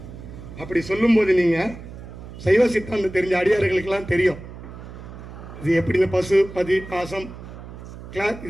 அப்படி சொல்லும் போது நீங்க சைவ சித்தாந்தம் தெரிஞ்ச அடியார்களுக்கெல்லாம் தெரியும் இது எப்படி. இந்த பசு, பதி, பாசம் கிளாஸ்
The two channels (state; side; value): noise; right; hum, 14 dB below the sound